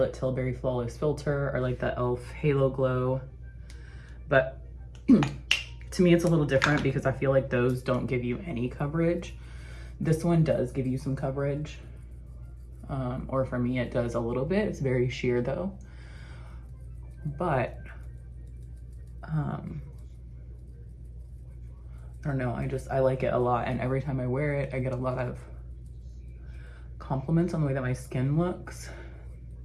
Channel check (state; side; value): identical; both; correlation 1.00